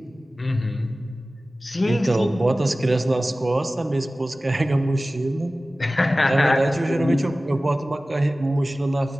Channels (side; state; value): both; normal; correlation 0.96